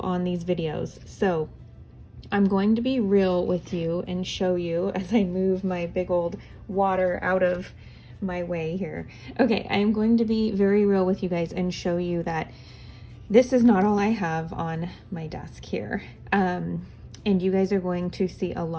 on these videos. So I'm going to be real with you and show you as I move my big old water out of my way here. Okay, I'm going to be very real with you guys and show you that this is not all I have on my desk here. And you guys are going to see a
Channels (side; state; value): both; identical; correlation 1.00